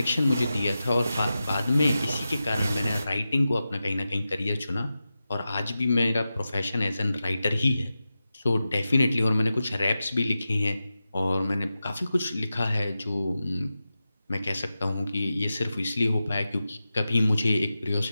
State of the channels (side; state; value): both; inverted; correlation -0.93